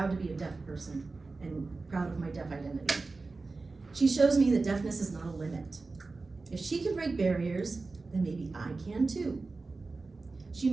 to be a deaf person and proud of my deaf identity. She shows me that deafness is not a limit. If she can break barriers, then maybe I can too. She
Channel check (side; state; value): left; quieter; 3.7 dB